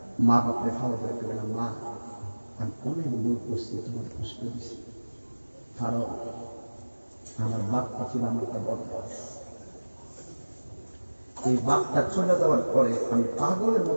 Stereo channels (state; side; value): inverted; both; correlation -1.00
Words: মা বাপরে খাওয়া করে দেবে না, মা আমি অনেক ভুল করছি, তোমার কষ্ট দিচ্ছি, কারণ আমার বাপটা ছিল আমার একটা বদমাস, এই বাপটা চলে যাওয়ার পরে আমি পাগলের